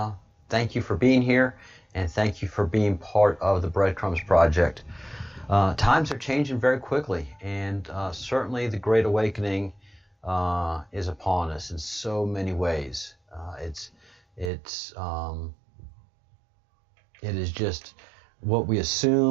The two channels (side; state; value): left; drops out; at 14.5 s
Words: thank you for being here, and thank you for being part of the Breadcrumbs project. Times are changing very quickly, and certainly the Great Awakening is upon us in so many ways. It is just what we